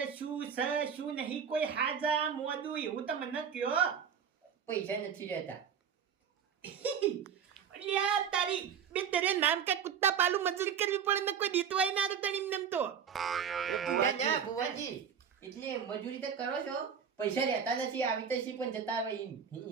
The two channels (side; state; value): left; quieter; 7.5 dB